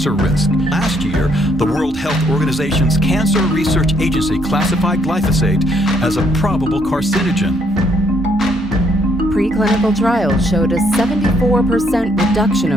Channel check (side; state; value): both; normal; correlation 0.70